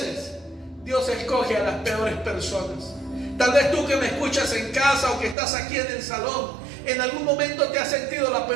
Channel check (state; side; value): drops out; left; at 5.4 s